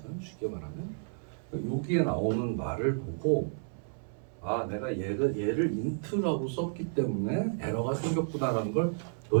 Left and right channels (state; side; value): silent; left; 57 dB below the other